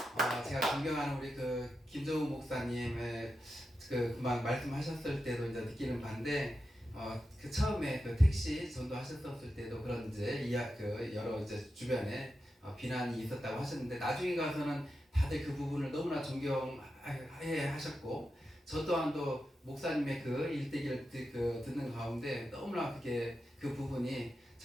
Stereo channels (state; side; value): normal; both; correlation 0.89